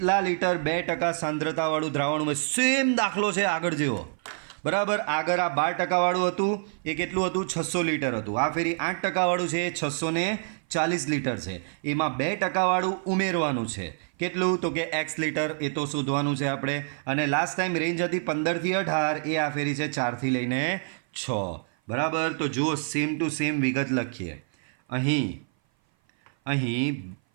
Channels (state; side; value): silent; left; 57 dB below the other